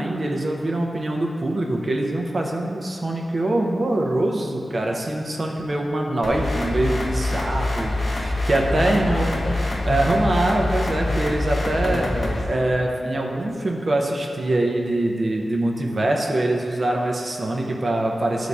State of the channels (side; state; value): both; normal; correlation 0.93